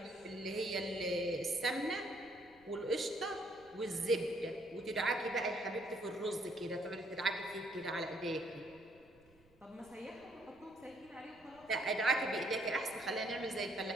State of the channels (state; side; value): noise; right; rumble, 29 dB below the sound